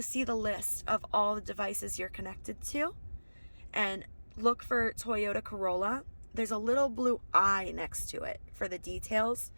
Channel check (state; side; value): inverted; both; correlation -1.00